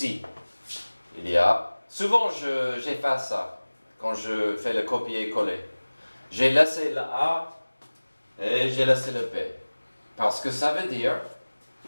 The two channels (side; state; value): both; inverted; correlation -1.00